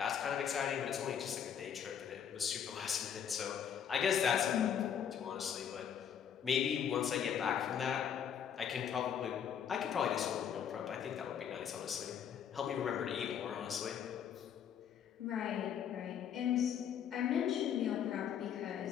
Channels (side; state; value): right; quieter; 8.5 dB